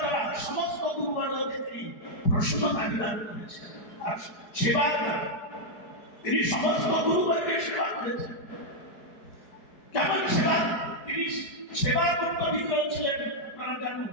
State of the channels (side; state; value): right; late; 4.7 ms